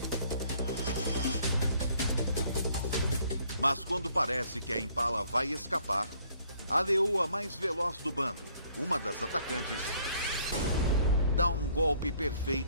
Mas quando parece que a impala vai escapar, a leoa mais veloz do bando, uma das atacantes, dá um golpe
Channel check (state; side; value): inverted; both; correlation -0.62